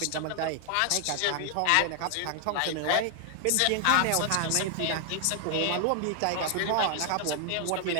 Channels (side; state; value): both; different; correlation 0.00